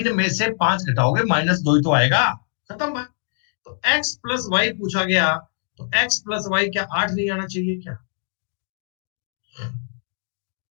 में से 5 घटाओगे -2 ही तो आएगा। खत्म बात। तो x प्लस वाई पूछा गया, तो x प्लस वाई क्या 8 नहीं आना चाहिए क्या?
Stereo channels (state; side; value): silent; right; digital silence